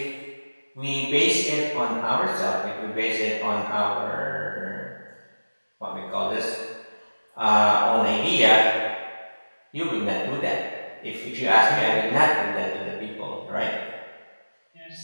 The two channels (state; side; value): inverted; both; correlation -1.00